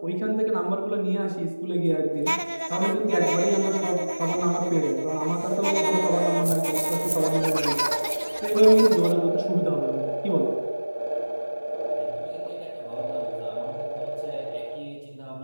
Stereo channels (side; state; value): both; inverted; correlation -1.00